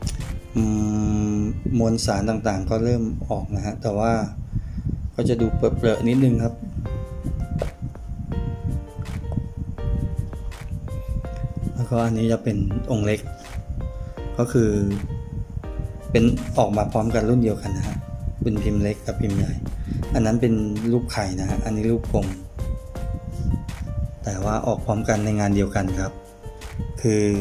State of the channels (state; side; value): identical; both; correlation 1.00